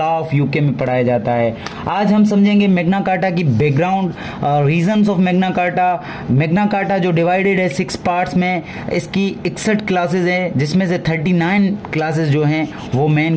ऑफ यूके में पढ़ाया जाता है। आज हम समझेंगे मैग्ना कार्टा की background, reasons of Magna carta. Magna carta जो डिवाइडेड है 6 पार्ट्स में, इसकी 61 क्लासेज हैं, जिसमें से 39 क्लासेज जो हैं वो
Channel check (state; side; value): identical; both; correlation 1.00